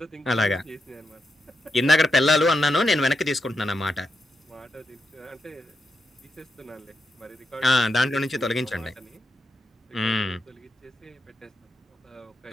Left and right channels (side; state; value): both; normal; correlation 0.85